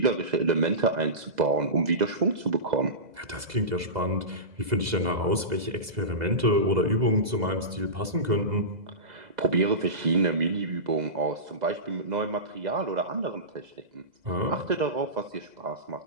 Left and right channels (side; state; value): left; late; 2.0 ms